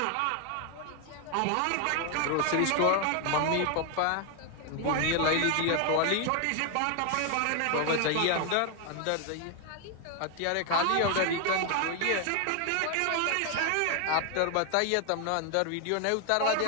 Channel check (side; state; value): both; different; correlation 0.01